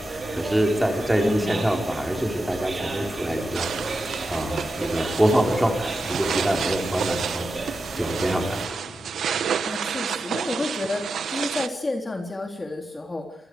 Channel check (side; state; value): both; normal; correlation 0.90